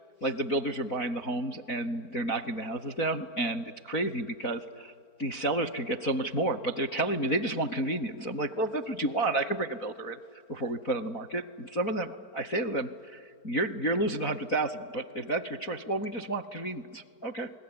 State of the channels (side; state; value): right; late; 4.4 ms